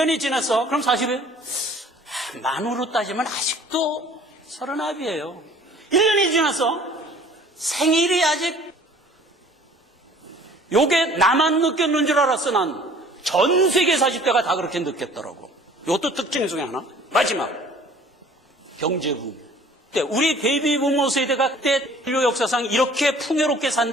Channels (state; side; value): normal; both; correlation 0.51